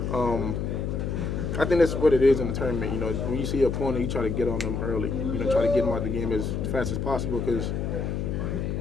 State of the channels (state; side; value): noise; left; hum, 2 dB below the sound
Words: I think that's what it is in the tournament. When you see your opponent, you try to get on them early. Try to get them out of the game as fast as possible because